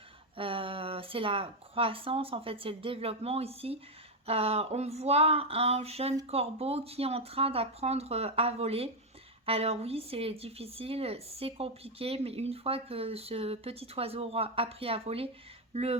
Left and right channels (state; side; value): normal; both; correlation 0.04